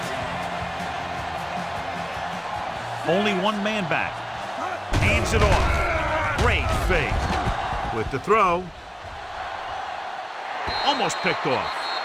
Only one man back. Hands it off. Great fake. With the throw. Almost picked off.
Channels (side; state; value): both; identical; correlation 1.00